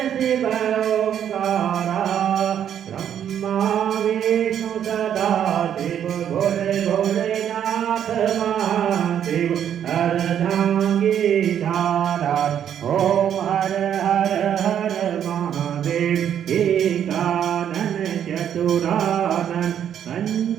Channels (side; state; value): left; quieter; 9.5 dB